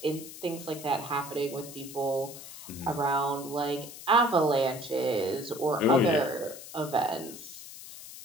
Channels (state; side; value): noise; left; hiss, 14 dB below the sound